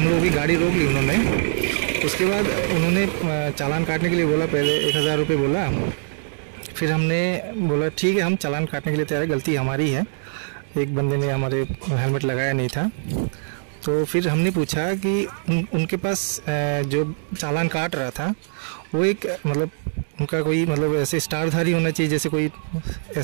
लोगों की गाड़ी रोक ली उन्होंने। उसके बाद उन्होंने चालान काटने के लिए बोला, पहले 1000 रुपये बोला। फिर हमने बोला ठीक है, हम चालान काटने के लिए तैयार है, गलती हमारी है, एक बंदे ने हमारे हेलमेट लगाया नहीं था। तो फिर हमने पूछा कि उनके पास जो चालान काट रहा था वो एक मतलब उनका कोई मतलब ऐसे स्टारधारी होना चाहिए, जैसे कोई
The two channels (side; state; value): left; silent; digital silence